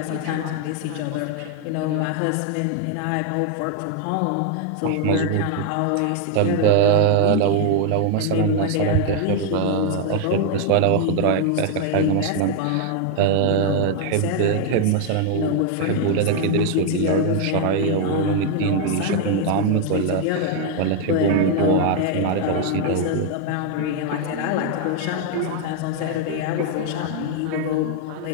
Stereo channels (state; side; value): different; both; correlation 0.00